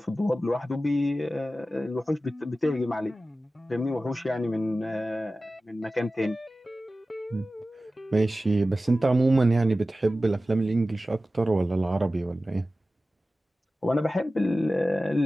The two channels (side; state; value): both; normal; correlation 0.95